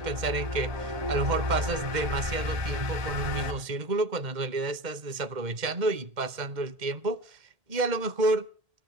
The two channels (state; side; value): late; left; 2.1 ms